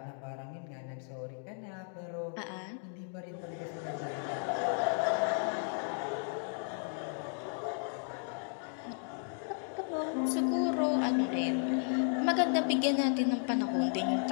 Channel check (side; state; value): right; silent; 55 dB below the other